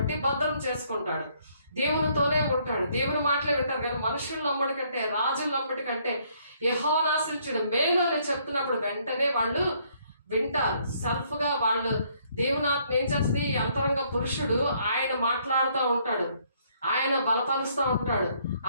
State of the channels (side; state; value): both; inverted; correlation -0.67